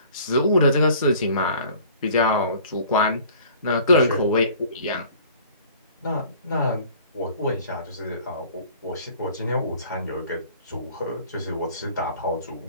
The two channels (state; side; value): inverted; both; correlation -0.51